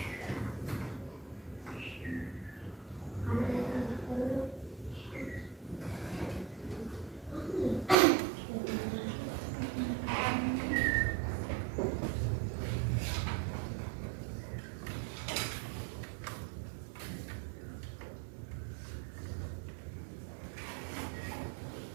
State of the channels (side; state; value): left; drops out; at 8.0 s